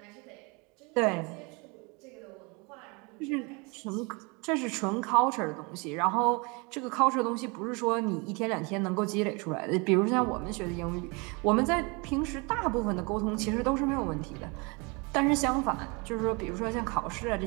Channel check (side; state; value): left; quieter; 29.5 dB